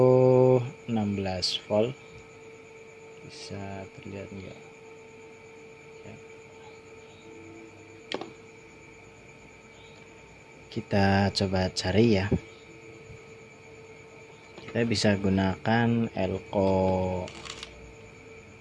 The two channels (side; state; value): both; identical; correlation 1.00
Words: 16 volt, bisa terlihat enggak ya. Kita coba cari ya, kita bisa gunakan elko